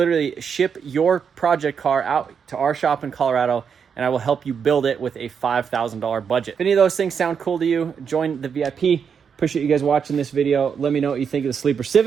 ship your project car out to our shop in Colorado, and I will help you build it with a $5,000 budget. If any of those things sound cool to you, join the VIP. Appreciate you guys watching this video. Let me know what you think of the Sleeper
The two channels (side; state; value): left; quieter; 6.8 dB